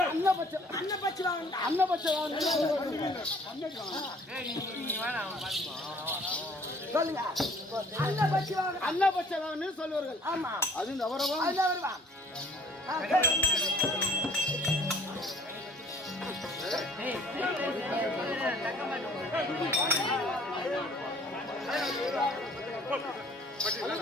அன்னபட்ச சொல்லுங்க. அன்னபட்ச வாகனம் சொல்லுவார்கள். ஆமா அது இந்த அவரவா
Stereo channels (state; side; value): normal; both; correlation 0.55